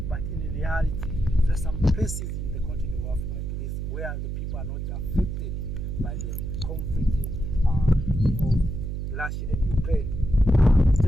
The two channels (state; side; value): noise; right; hum, 3 dB below the sound